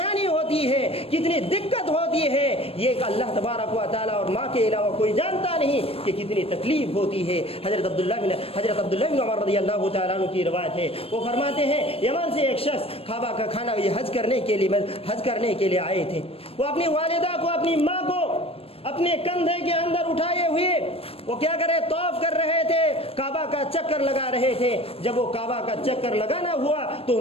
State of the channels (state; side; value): late; right; 0.28 ms